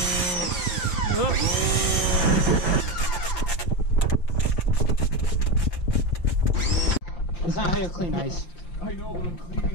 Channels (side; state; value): right; late; 5.6 ms